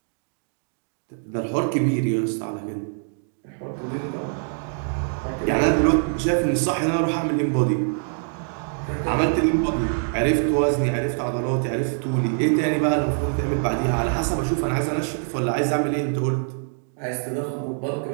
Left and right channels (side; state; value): left; silent; digital silence